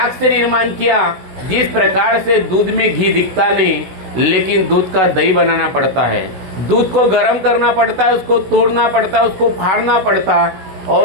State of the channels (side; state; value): left; late; 16 ms